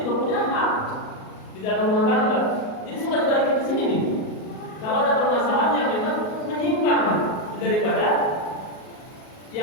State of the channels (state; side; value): late; right; 38 ms